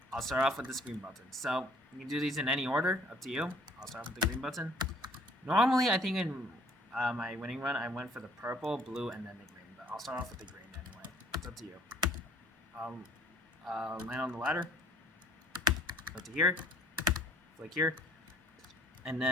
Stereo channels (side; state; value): both; normal; correlation 0.57